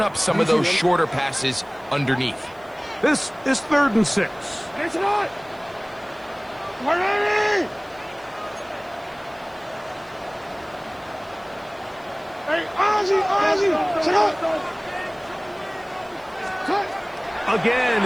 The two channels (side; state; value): right; noise; hiss, 30 dB below the sound